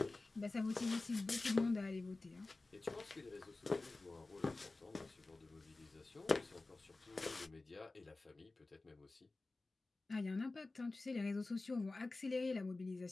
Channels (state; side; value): quieter; right; 3.3 dB